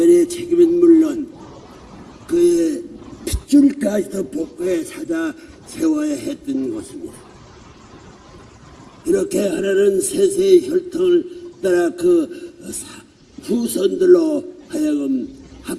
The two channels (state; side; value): identical; both; correlation 1.00